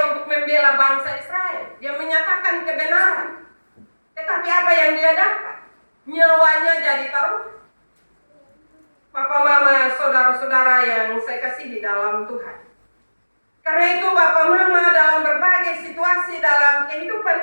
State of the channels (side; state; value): both; inverted; correlation -1.00